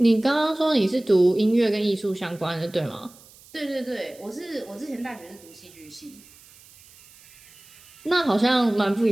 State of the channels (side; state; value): right; noise; hiss, 24 dB below the sound